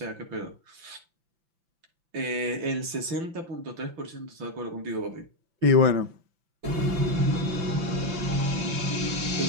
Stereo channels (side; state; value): left; late; 5.9 ms